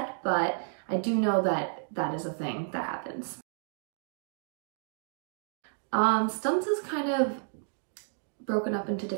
but I do know that that is a thing that happens. Stunts is kind of broken up into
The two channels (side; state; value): left; silent; digital silence